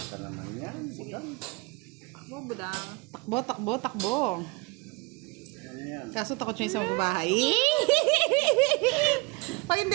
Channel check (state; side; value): quieter; left; 28.2 dB